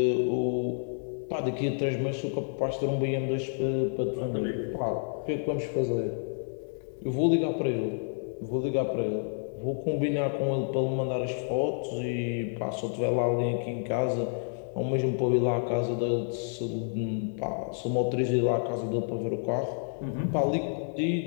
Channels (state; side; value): silent; right; digital silence